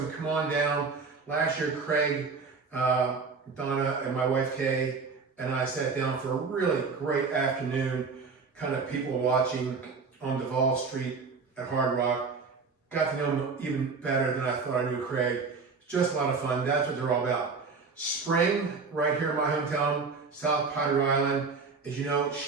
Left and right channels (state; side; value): quieter; left; 4.7 dB